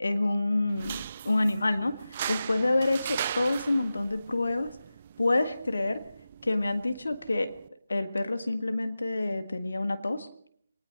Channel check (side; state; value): both; inverted; correlation -0.94